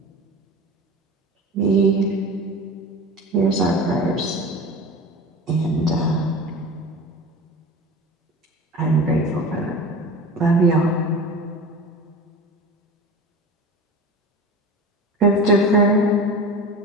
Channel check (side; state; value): both; normal; correlation 0.32